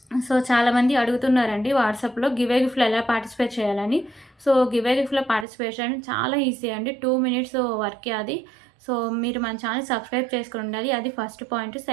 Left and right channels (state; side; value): drops out; left; at 5.5 s